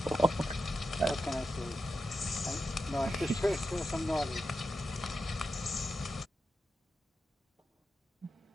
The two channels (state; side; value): normal; both; correlation 0.89